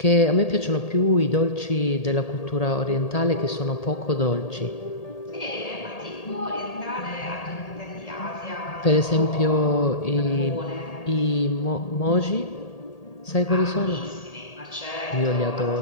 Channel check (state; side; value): late; right; 1.8 ms